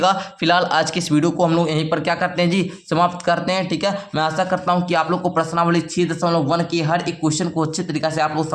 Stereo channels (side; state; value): both; identical; correlation 1.00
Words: फिलहाल आज के इस वीडियो को हम लोग यहीं पर क्या करते हैं जी समाप्त करते हैं, ठीक है। मैं आशा करता हूँ कि आप लोग को प्रश्नावली 6.1 के हर एक क्वेश्चन को अच्छे तरीके से आप लोग